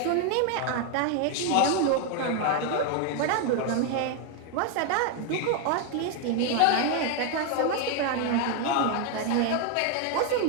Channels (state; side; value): different; both; correlation 0.01